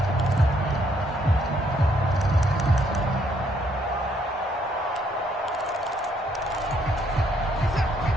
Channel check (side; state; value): both; normal; correlation 0.70